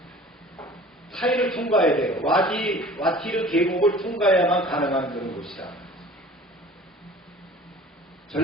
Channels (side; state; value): both; normal; correlation 0.45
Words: 타이를 통과해야 돼요. 와티르 계곡을 통과해야만 가능한 그런 곳이다.